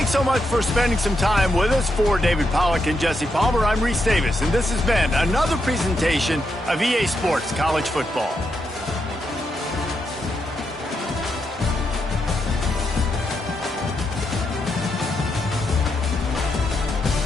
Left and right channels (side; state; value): both; normal; correlation 0.82